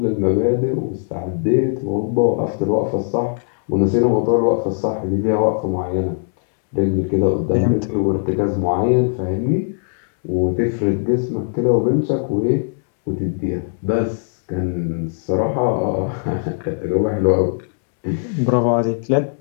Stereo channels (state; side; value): silent; right; digital silence